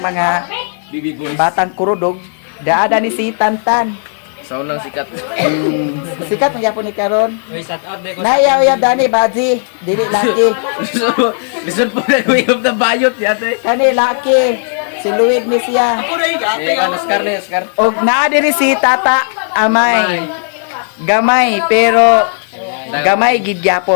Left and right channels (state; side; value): silent; right; digital silence